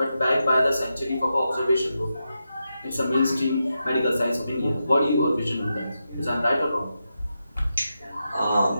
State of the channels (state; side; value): inverted; both; correlation -0.88